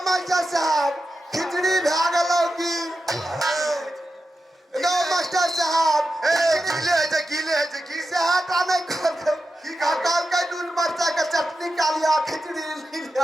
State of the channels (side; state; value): both; normal; correlation 0.90